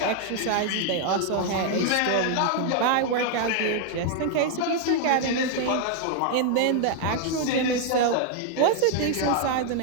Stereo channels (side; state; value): both; different; correlation 0.00